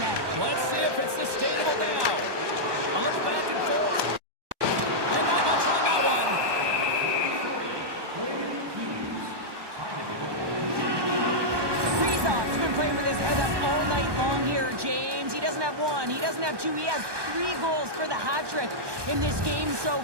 Let's see if it's sustainable now. A little back and forth. And not much on that one. Kaprizov's been playing with his head up all night long here, James. He doesn't have one, he doesn't have two, he has 3 goals for the hat trick in this game so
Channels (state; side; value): late; left; 1.2 ms